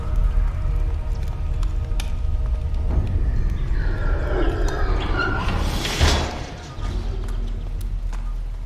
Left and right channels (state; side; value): identical; both; correlation 1.00